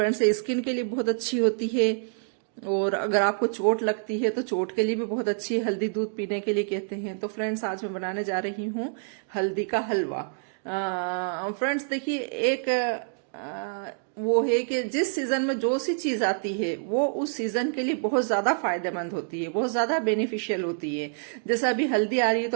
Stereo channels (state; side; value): silent; left; digital silence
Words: ये स्किन के लिए बहुत अच्छी होती है। और अगर आपको चोट लगती है तो चोट के लिए भी बहुत अच्छी है, हल्दी दूध पीने के लिए कहते हैं। तो फ्रेंड्स, आज मैं बनाने जा रही हूँ हल्दी का हलवा। फ्रेंड्स देखिए, एक वो है कि जिस सीजन में जो सी चीज आती है वो उस सीजन के लिए बहुत ज्यादा फायदेमंद होती है, बहुत ज्यादा बेनिफिशियल होती है। जैसे अभी हल्दी आ रही है,